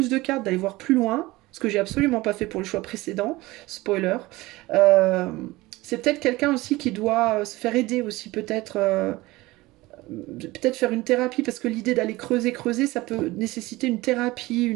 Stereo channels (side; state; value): left; quieter; 19.9 dB